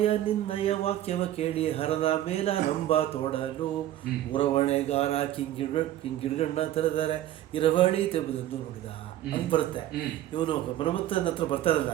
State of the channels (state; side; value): quieter; left; 13.1 dB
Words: ನಿನ್ನಯ ವಾಕ್ಯವ ಕೇಳಿ ಹರದ ಮೇಲ ನಂಬ ತೋಡಲು ಉರವಣೆಗಾರ ಕಿಂಗಿಡ್ಗಣ್ಣ ತೆರೆದರೆ ಇರವಳಿ ತೆಬುದನ್ನು ನೋಡಿದ ಅಂತ ಬರುತ್ತೆ. ಇವನು ಮನ್ಮಥನ ಹತ್ರ ಬರ್ತಾರಲ್ಲ,